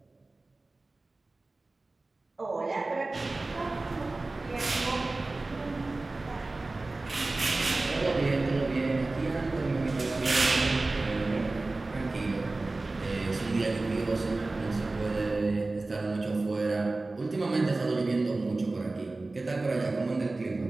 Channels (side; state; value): left; quieter; 3.2 dB